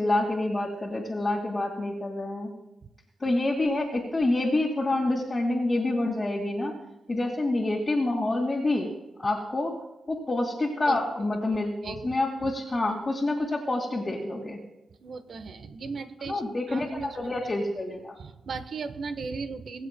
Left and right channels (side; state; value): both; normal; correlation 0.93